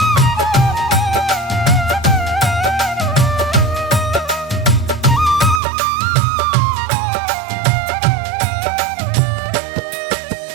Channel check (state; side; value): drops out; left; at 5.6 s